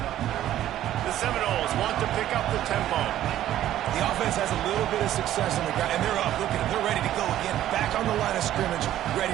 The Seminoles want to pick up the tempo. The offense has a little bit of success on the ground, and they're up. Look at them. They're ready to go again. Back on the line of scrimmage, ready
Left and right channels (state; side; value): quieter; left; 12.7 dB